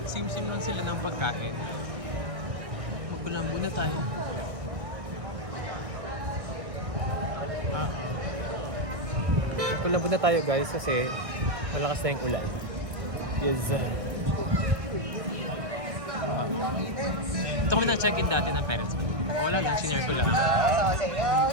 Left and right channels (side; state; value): left; late; 1.6 ms